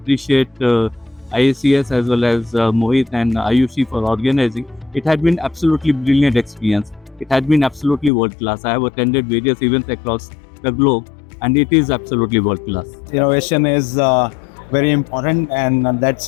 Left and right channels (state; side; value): drops out; right; at 8.1 s